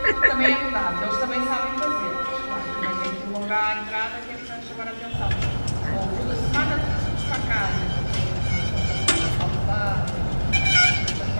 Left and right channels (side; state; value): both; inverted; correlation -1.00